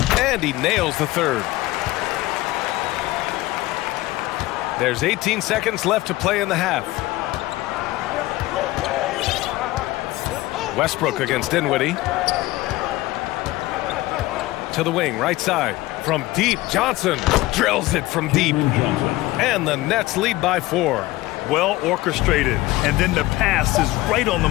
And he nails the third. There's 18 seconds left to play in the half. Westbrook against Dinwiddie. To the wing, right side. From deep, Johnson drills it from deep. And the Nets lead by 4. Well orchestrated, and then the pass is right on the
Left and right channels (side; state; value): right; quieter; 18.4 dB